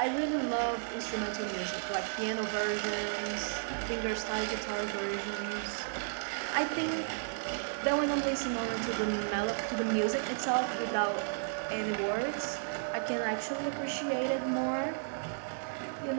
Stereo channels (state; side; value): silent; left; digital silence